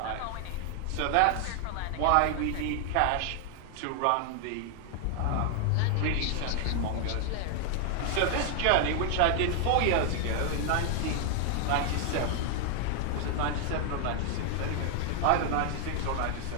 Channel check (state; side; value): different; both; correlation 0.00